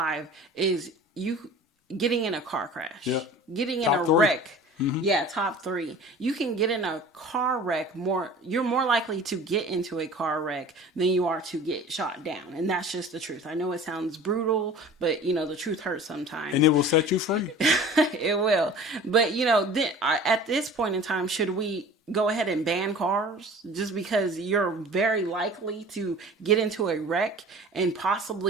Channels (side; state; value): both; normal; correlation 0.42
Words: is you getting in a car crash, getting in a wreck Yeah, top three. You can get in a car wreck you're more likely to get into a car wreck than you are to get shot down. And that's just the truth. I know it sounds brutal, but the truth hurts And sometimes. it will set you free. It will. But then at this point in time, should we go ahead and ban cars just because you're very likely to get into a wreck and